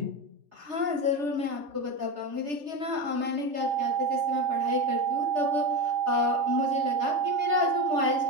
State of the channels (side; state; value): left; late; 3.3 ms